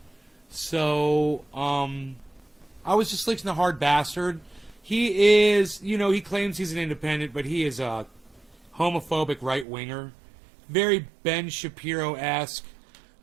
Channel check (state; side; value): drops out; left; at 9.7 s